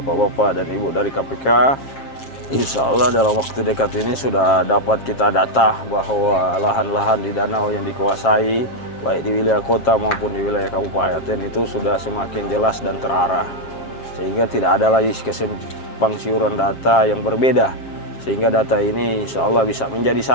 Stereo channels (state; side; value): late; right; 7.4 ms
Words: dan ibu dari KPK, insya Allah dalam waktu dekat ini sudah dapat kita data bahwa lahan-lahan di danau yang dikuasai baik di wilayah kota maupun di wilayah kabupaten itu sudah semakin jelas dan terarah, sehingga tidak ada lagi kesimpang siuran data yang berbeda, sehingga data ini insya Allah bisa menjadi